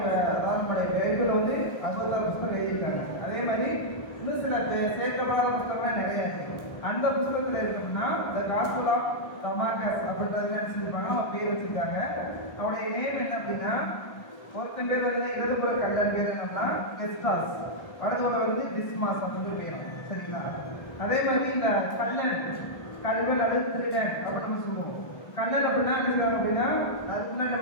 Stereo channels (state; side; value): late; right; 1.3 ms